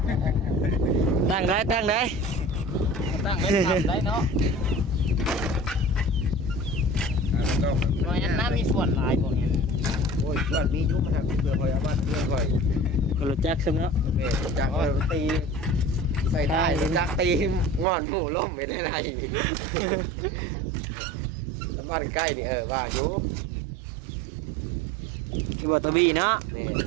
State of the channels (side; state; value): left; drops out; at 17.9 s